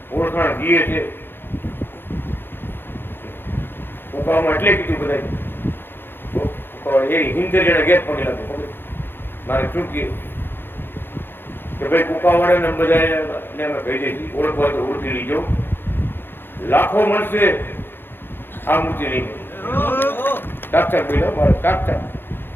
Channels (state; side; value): late; right; 0.10 ms